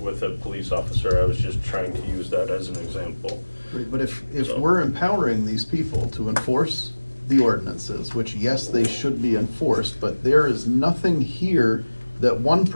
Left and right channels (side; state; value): both; inverted; correlation -1.00